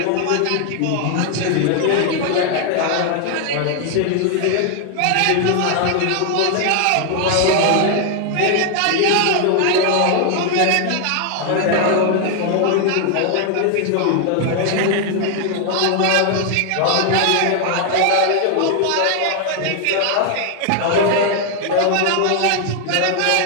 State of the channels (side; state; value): both; different; correlation 0.00